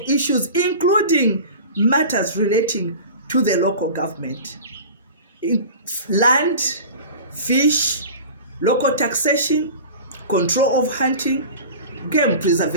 issues, including matters relating to the local government. Land, fish, local taxation, control of hunting, game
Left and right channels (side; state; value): both; inverted; correlation -0.36